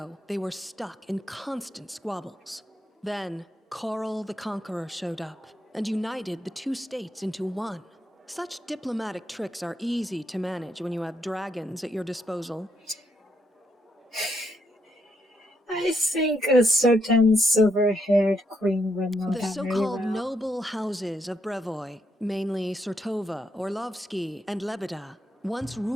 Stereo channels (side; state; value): both; normal; correlation 0.78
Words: they were stuck in constant squabbles. Then, Coral the Conqueror showed up and united the two states into one. Such diplomatic tricks are easy to manage when you have dragons at your disposal. I think a certain silver-haired queen would know The that very so-called well. noble houses of Brevoy, mainly Sertova, Orlovsky, and Lebeda, once